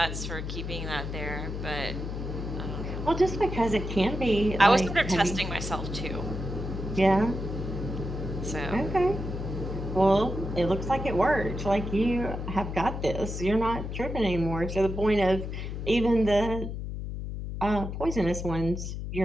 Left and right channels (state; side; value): noise; left; hum, 5 dB below the sound